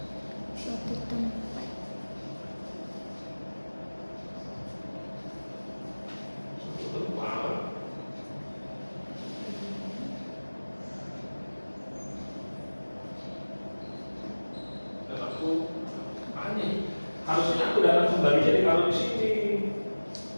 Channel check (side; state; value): both; inverted; correlation -1.00